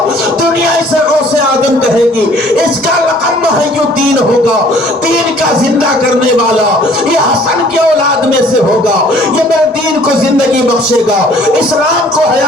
دنیا اسے غوث آدم کہے گی، اس کا لقب محی الدین ہوگا، دین کا زندہ کرنے والا یہ حسن کی اولاد میں سے ہوگا، یہ میرے دین کو زندہ زندگی بخشے گا، اسلام کو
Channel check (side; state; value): both; normal; correlation 0.55